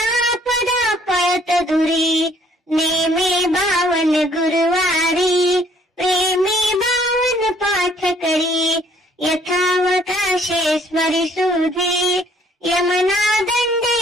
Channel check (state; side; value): normal; both; correlation 0.62